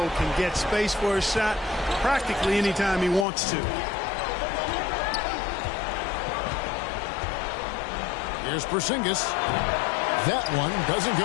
can get space for his shot practically anytime he wants to. Here's Porzingis. That one doesn't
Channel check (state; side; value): drops out; right; at 3.2 s